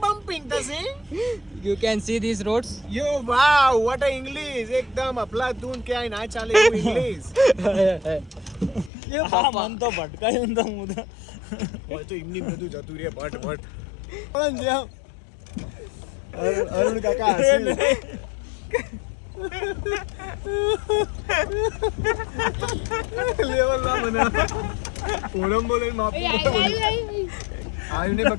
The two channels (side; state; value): right; drops out; at 8.9 s